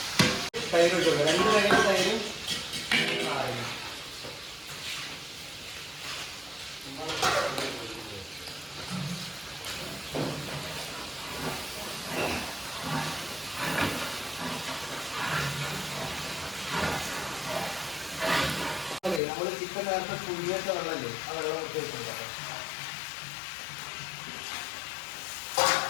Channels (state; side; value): drops out; right; at 19.2 s